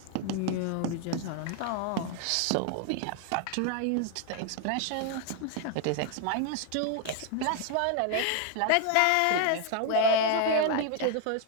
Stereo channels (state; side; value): different; both; correlation 0.00